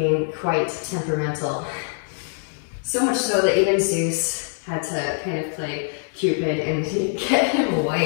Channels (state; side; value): silent; right; 63 dB below the other